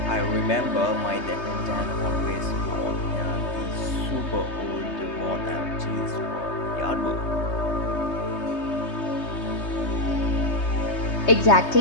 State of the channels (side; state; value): right; late; 3.3 ms